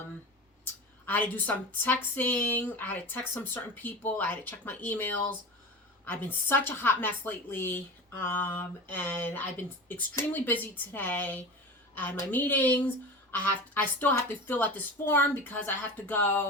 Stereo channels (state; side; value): normal; both; correlation 0.30